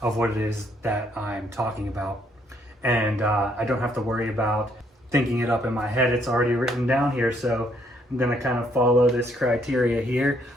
of what it is that I'm talking about. And I don't have to worry about thinking it up in my head. It's already written down here, so I'm gonna kind of follow this criteria here.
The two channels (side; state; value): both; normal; correlation 0.69